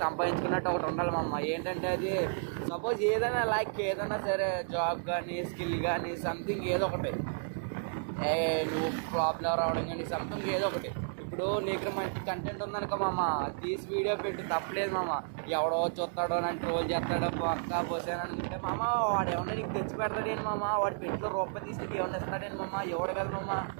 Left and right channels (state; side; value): silent; left; digital silence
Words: సంపాదించుకున్నట్టు ఒకటి ఉండాలి మా అమ్మ. ఏంటంటే అది సపోజ్ ఏదైనా ఏదైనా సరే జాబ్ కానీ స్కిల్ కానీ సంథింగ్ ఏదో ఒకటి నువ్వు ప్రాబ్లం రావడం కానీ సంథింగ్ ఏదో ఒకటి. ఇప్పుడు నీకు మంచి కంటెంట్ ఉందనుకో మామ, తీసి వీడియో పెట్టి తప్పలేదు మామ. ఎవడో చూస్తాడో నన్ను ట్రోల్ చేస్తాడో పక్కా పోసాను అనుకుంటే మామ, వాడు ఏమన్నా నీకు తెచ్చి పెడతాడేంటి మామ, వాడి పెట్టిలో రూపాయి తీసి నీకు ఏమన్నా ఇస్తాడేంటి మామ, ఎవడు కదా మామ.